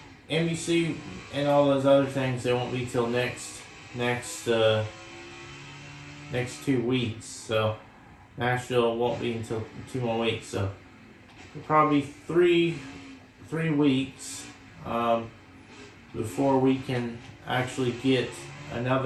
NBC and all those other things, they won't be till next 2 weeks. So Nashville won't be until 2 more weeks. So probably three weeks before we can actually get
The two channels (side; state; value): both; identical; correlation 1.00